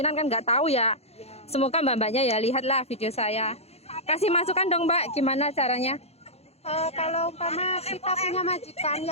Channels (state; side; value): late; right; 0.30 ms